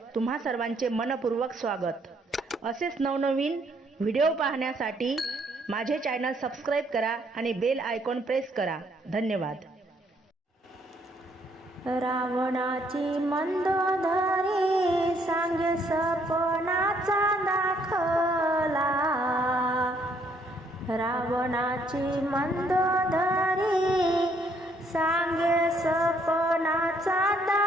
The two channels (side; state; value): both; normal; correlation 0.68